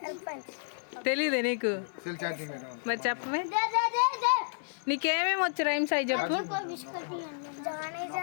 తెలీదే నీకు? మరి చెప్పమే. నీకేమేమి వచ్చు రైమ్స్ అవి చెప్పు.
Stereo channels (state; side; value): silent; right; digital silence